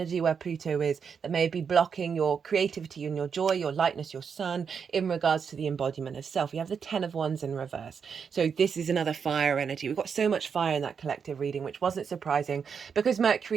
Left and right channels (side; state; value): left; quieter; 6.5 dB